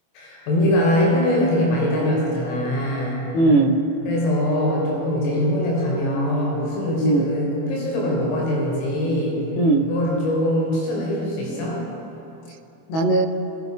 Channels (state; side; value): late; right; 25 ms